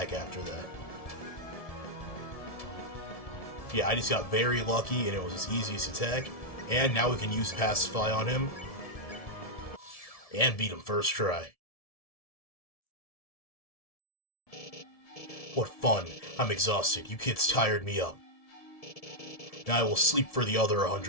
after that. Yeah, I just got very lucky, and it was his easiest attack. And now we can use Pacify on him. And beat him first try. What fun. I'm exhausted. You kids tired me up. Now I will sleep for the other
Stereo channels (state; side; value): late; right; 1.7 ms